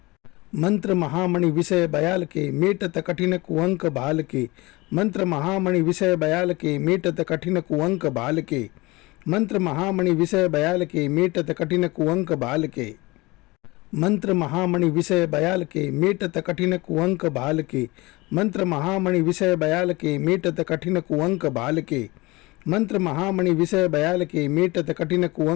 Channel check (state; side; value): quieter; right; 22.7 dB